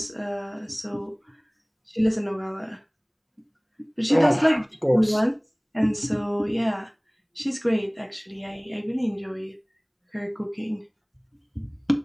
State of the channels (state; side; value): identical; both; correlation 1.00